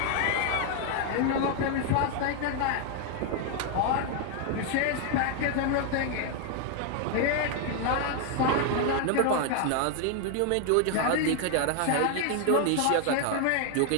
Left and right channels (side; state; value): both; different; correlation 0.00